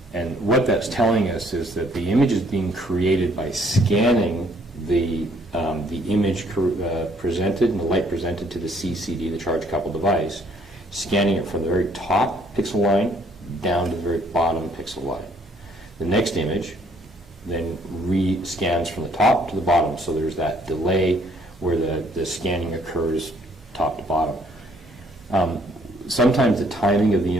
And what that's telling us is that the image is being created by scanning the image presented and the light presented to the CCD, the charge coupled device, scanning it from the very top pixel line down to the very bottom pixel line. The next image then re-scans from the top to the bottom, so there's that delay where the scanning occurs top to bottom. Sometimes the timing of the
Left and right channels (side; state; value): both; normal; correlation 0.64